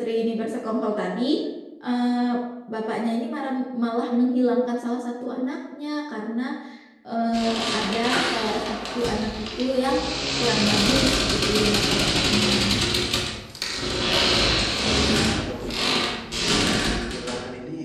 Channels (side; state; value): both; identical; correlation 1.00